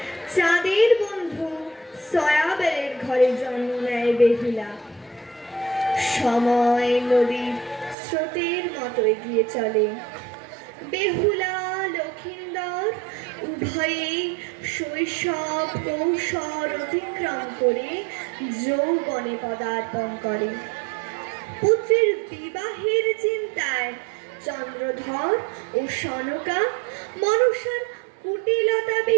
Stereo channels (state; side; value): drops out; left; at 8.0 s